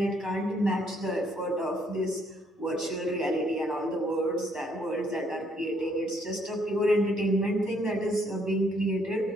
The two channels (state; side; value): normal; both; correlation 0.69